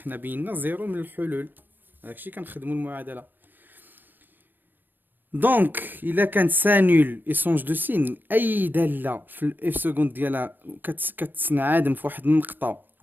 بينا زيرو من الحلول، هادشي كنخدمو المعادله. دونك الا كانت سانول ايشونج دو سين، اي داله في الاف سكوند ديالها كتنعدم في واحد النقطه،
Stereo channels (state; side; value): late; left; 0.091 ms